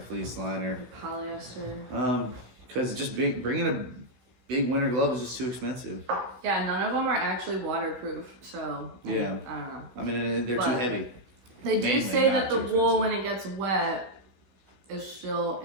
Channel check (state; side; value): late; left; 16 ms